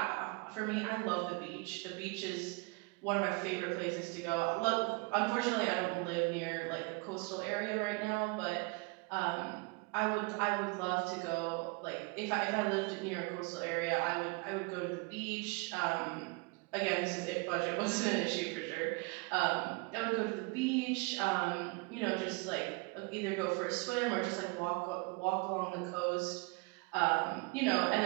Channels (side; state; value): left; quieter; 28.8 dB